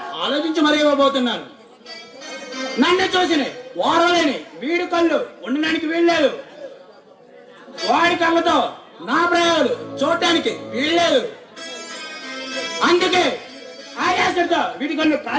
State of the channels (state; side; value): identical; both; correlation 1.00